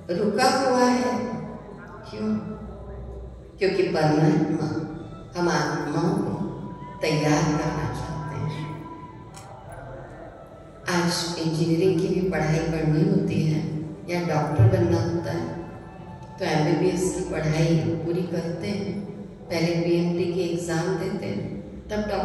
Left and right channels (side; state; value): both; identical; correlation 1.00